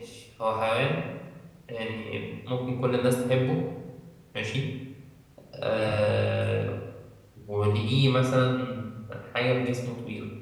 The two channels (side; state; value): both; identical; correlation 1.00